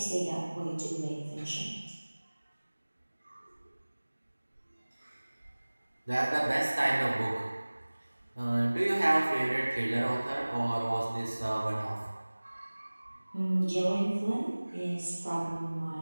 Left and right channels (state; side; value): inverted; both; correlation -1.00